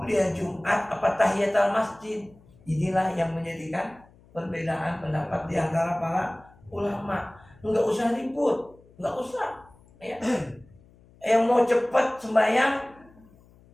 Jumat apa tahiyatul masjid? Inilah yang menjadikan perbedaan pendapat di antara para ulama. Enggak usah ribut, enggak usah. Ya. Yang mau cepat sembahyang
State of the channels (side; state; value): left; noise; hum, 27 dB below the sound